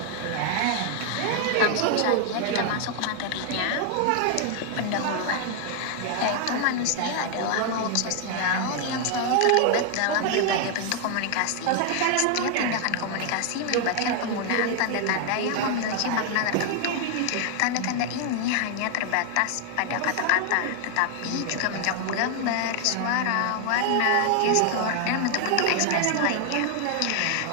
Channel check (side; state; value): both; different; correlation 0.00